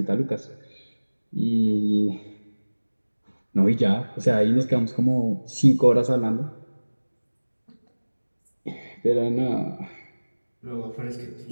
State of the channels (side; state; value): both; inverted; correlation -1.00